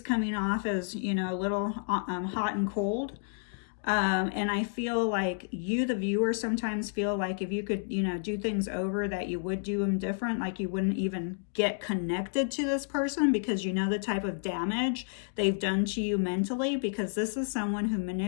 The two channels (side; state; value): right; silent; digital silence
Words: off as, you know, a little hot and cold. And I feel like you, the viewer, sometimes feel like if you could, you know, do things over, that you would do them different. Like you wouldn't even get connected to this person because you know the type of damage they've done to you mentally, because this is someone who